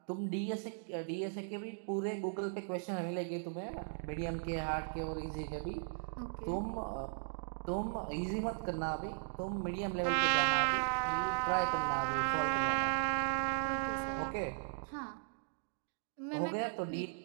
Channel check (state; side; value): silent; left; digital silence